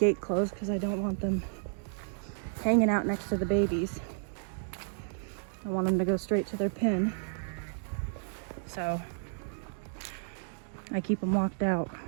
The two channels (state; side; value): silent; left; digital silence